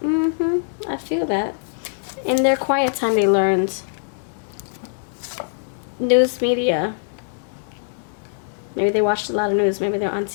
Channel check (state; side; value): silent; right; 64 dB below the other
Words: I feel that. In their quiet time, they learned. News media. Maybe they watched a lot of news. Maybe they're on